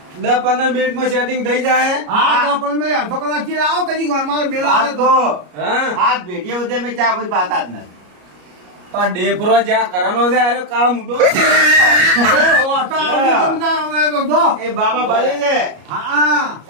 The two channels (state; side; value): late; left; 33 ms